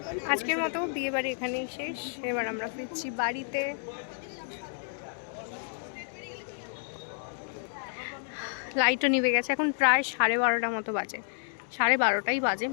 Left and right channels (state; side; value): silent; right; digital silence